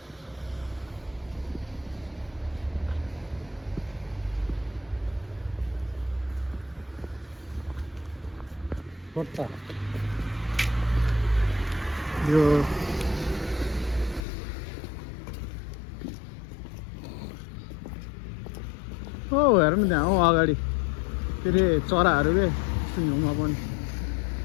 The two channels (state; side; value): drops out; right; at 14.2 s